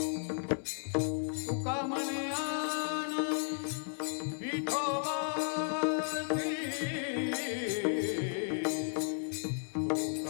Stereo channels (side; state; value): right; silent; digital silence